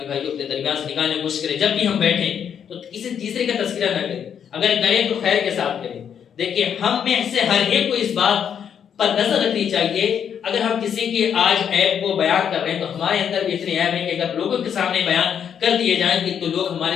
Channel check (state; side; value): quieter; right; 8.2 dB